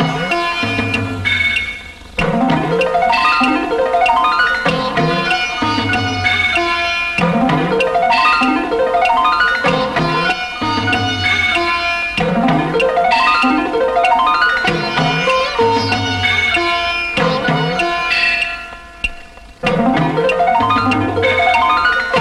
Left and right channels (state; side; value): identical; both; correlation 1.00